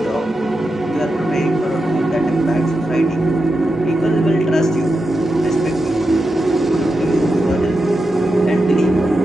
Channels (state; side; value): normal; both; correlation 0.89